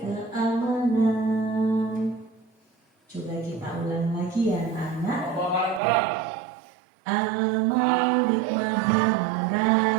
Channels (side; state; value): left; drops out; at 5.8 s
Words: keamanan. Coba kita ulang lagi ya anak. Bareng-bareng. Al-Malik maha